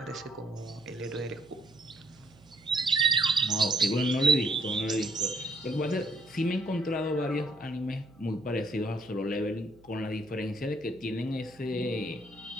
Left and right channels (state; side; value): noise; right; hum, 26 dB below the sound